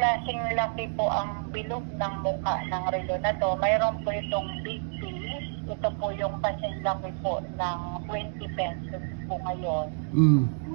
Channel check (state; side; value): silent; left; digital silence